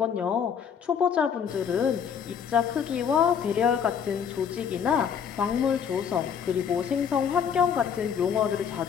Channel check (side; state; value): right; quieter; 7.5 dB